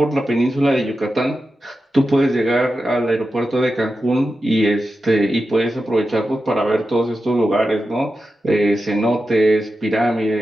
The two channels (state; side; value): normal; both; correlation 0.91